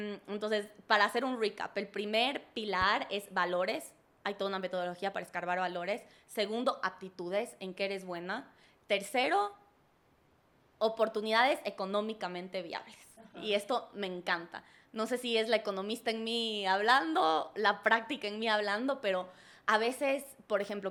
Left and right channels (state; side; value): identical; both; correlation 1.00